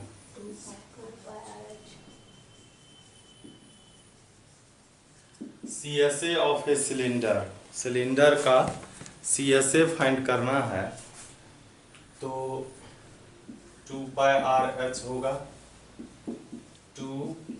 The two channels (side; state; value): both; identical; correlation 1.00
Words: CSA ऑफ ए सिलेंडर का CSA फाइंड करना है। तो 2πRH होगा।